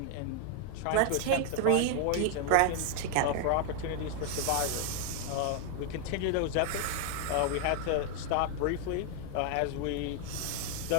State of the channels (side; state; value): both; different; correlation 0.00